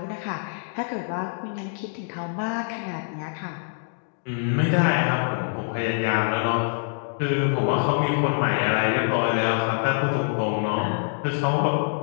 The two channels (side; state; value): right; silent; digital silence